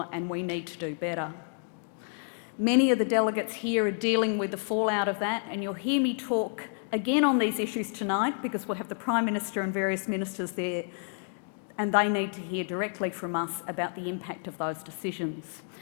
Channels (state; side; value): silent; right; 55 dB below the other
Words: and we need to do better. Many of the delegates here are dealing with the fallout of that, and you'll hear me talk again on these issues tonight because we'll have the Prime Minister and various ministers there, and they need to hear directly from us about the impact of those decisions.